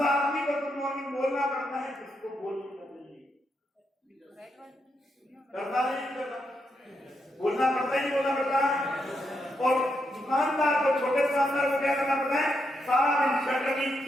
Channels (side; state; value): both; normal; correlation 0.81